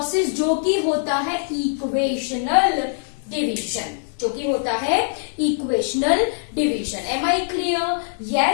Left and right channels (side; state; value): right; silent; digital silence